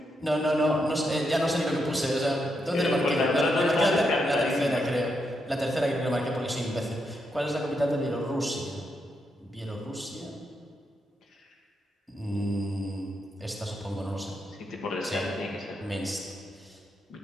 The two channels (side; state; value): both; normal; correlation 0.82